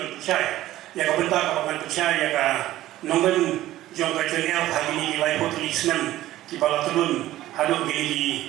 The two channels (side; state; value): left; quieter; 14.9 dB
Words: ban percaya ya ka benta ka ban percaya ya ka nang lim jong ekchania hari ni lai potli senam ki bala turun hadu